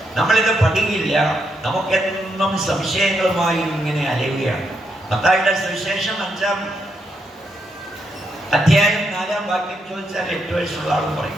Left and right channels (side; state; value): both; normal; correlation 0.80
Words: നമ്മളിത് പഠിക്കില്ല. നമുക്കെന്നും സംശയങ്ങളുമായി ഇങ്ങനെ അലയുകയാണ്. മത്തായിയുടെ സുവിശേഷം 5-ാം അധ്യായം 4-ാം വാക്യം ചോദിച്ചാൽ 8 വയസ്സുള്ള ആളും